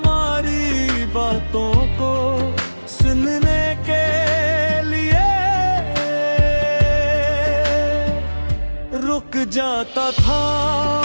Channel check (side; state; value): both; inverted; correlation -1.00